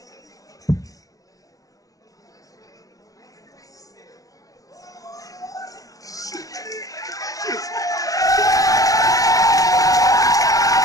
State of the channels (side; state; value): right; late; 0.17 ms